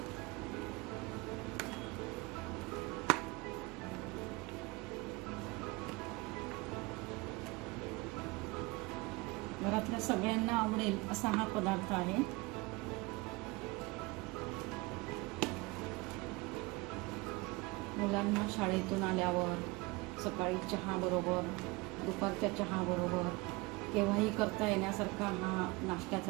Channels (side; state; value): left; quieter; 24.1 dB